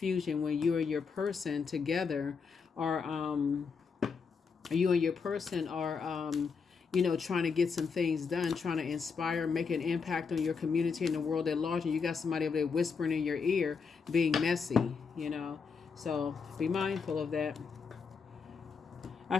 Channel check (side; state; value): right; quieter; 5.5 dB